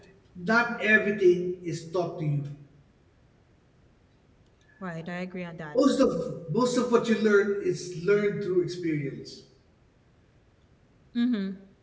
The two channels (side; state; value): both; identical; correlation 1.00